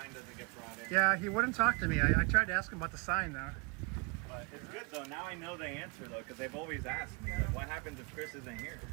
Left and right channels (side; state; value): left; quieter; 30.5 dB